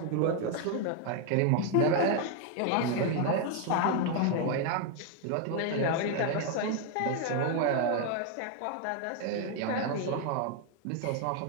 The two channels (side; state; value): both; different; correlation 0.01